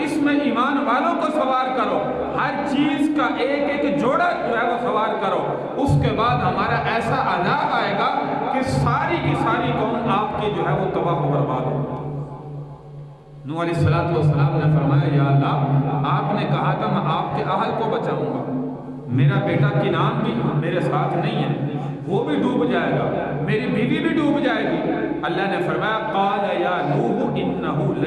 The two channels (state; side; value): identical; both; correlation 1.00